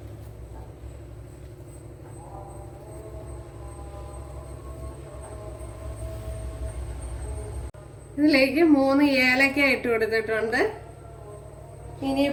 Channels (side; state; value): both; identical; correlation 1.00